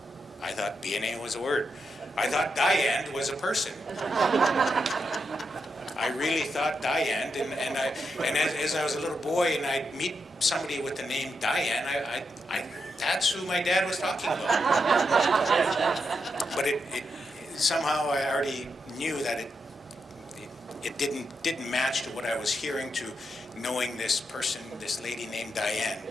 I thought BNA was a word. I thought Diane was a person. I really thought Diane, and as I was a little boy and I'd meet somebody with the name Diane, I that's who my dad was talking about. But it somehow I already knew that it didn't match to what I was hearing, to knowing this person, this lady named Diane,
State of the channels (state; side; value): normal; both; correlation 0.84